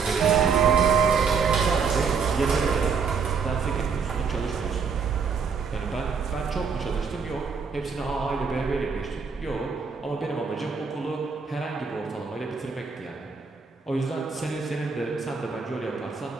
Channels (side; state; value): left; quieter; 5.6 dB